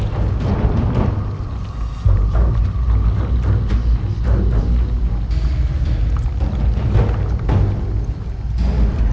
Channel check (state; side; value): identical; both; correlation 1.00